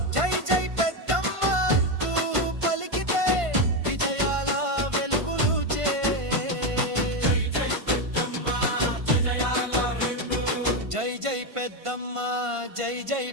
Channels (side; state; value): left; late; 1.5 ms